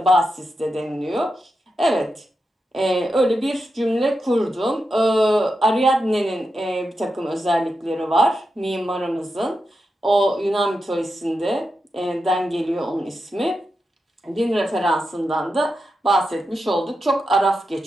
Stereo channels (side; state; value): both; normal; correlation 0.88